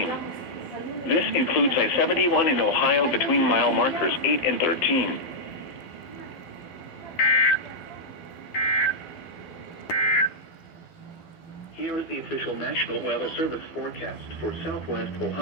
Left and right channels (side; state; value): right; late; 12 ms